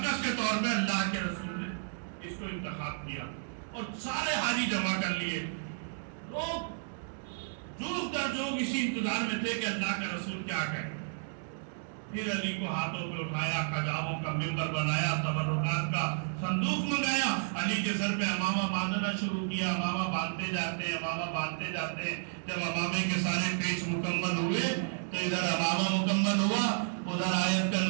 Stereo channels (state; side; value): silent; left; digital silence